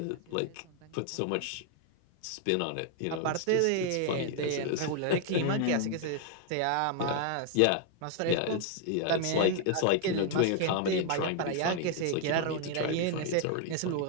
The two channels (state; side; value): different; both; correlation 0.00